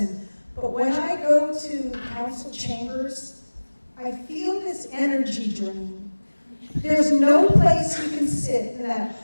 but when I go to council chambers, I feel this energy drain. There's no place you can sit in that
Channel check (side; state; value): both; inverted; correlation -1.00